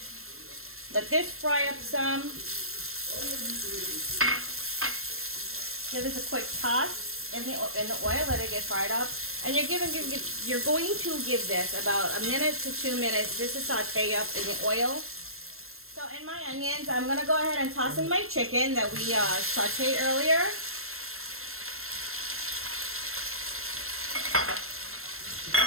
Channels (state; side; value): late; left; 0.62 ms